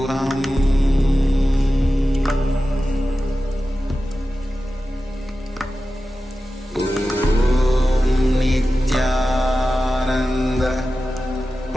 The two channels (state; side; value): normal; both; correlation 0.94